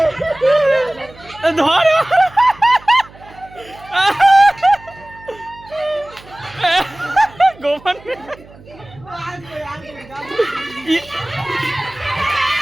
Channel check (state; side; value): noise; right; hum, 23 dB below the sound